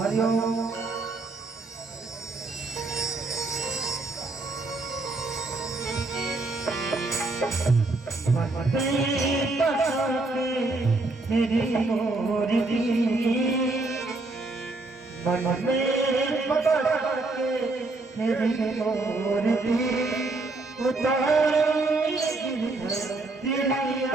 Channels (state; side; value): quieter; left; 3.2 dB